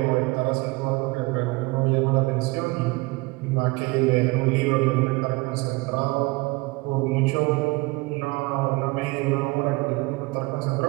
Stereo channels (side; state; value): left; quieter; 24.2 dB